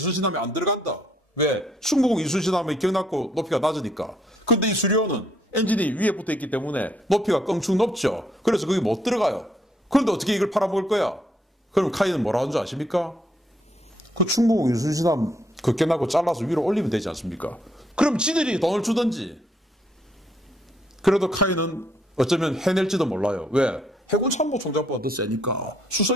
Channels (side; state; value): both; normal; correlation 0.71